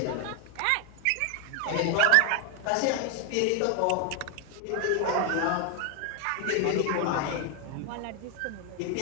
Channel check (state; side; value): different; both; correlation 0.01